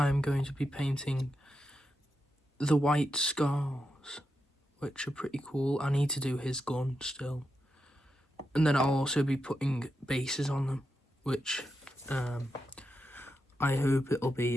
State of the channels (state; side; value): normal; both; correlation 0.86